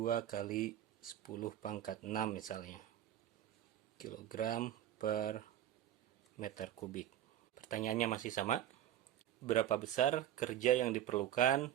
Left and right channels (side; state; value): left; quieter; 11.4 dB